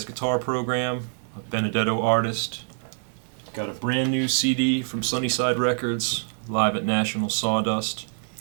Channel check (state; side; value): silent; left; digital silence